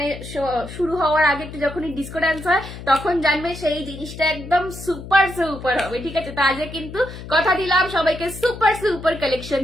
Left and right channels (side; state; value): left; noise; hum, 12 dB below the sound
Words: শুরু হওয়ার আগে একটু যখনই ডিসকো ডান্স হয় তখন জানবে সেই জিনিসটা একদম সুপার সুপার হবে, ঠিক আছে? তো আজকে কিন্তু কথা দিলাম সবাইকে সুপার সুপার কালেকশন